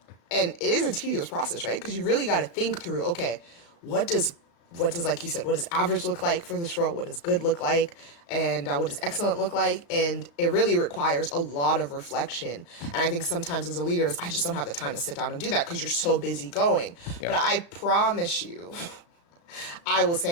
And it is a tedious process, right? Because you really got to think through, okay, what does like you said, what does average look like for this role? What does good look like? And what does excellent look like? And it really requires a lot of reflection. And I think sometimes as a leader, I just don't have the time to sit down and do that because you're so busy going. Yeah. But I promise you, I will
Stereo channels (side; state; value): right; late; 35 ms